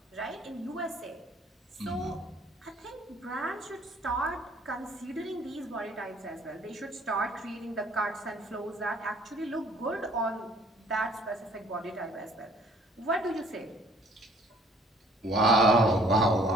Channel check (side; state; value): both; normal; correlation 0.57